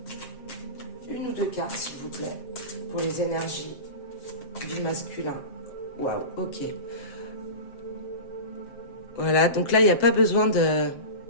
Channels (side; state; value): right; late; 7.5 ms